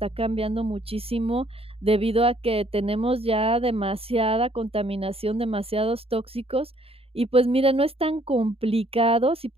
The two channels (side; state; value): left; late; 0.28 ms